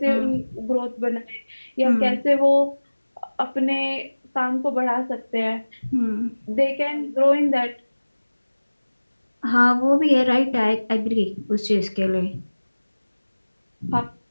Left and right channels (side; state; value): both; inverted; correlation -1.00